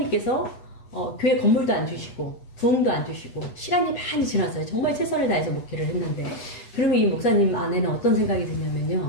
교회 건물도 안 주시고 부흥도 안 주시고 시간이 많이 지났어요. 정말 최선을 다해서 목회를 했는데 그러면 이 목사님 안에는 어떤 생각이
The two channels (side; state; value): right; late; 8.2 ms